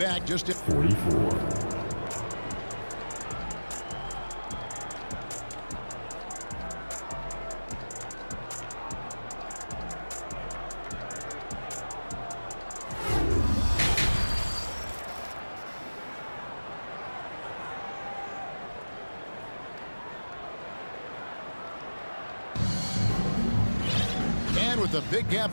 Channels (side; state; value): both; inverted; correlation -1.00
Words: just at 44. With a big gap